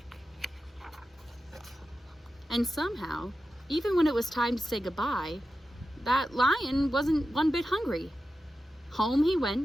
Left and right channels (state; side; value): normal; both; correlation 0.92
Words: And somehow, even when it was time to say goodbye, that lion wasn't one bit hungry. Home he